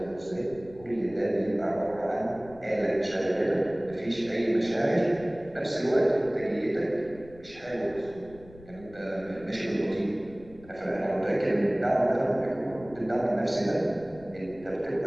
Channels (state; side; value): noise; left; rumble, 21 dB below the sound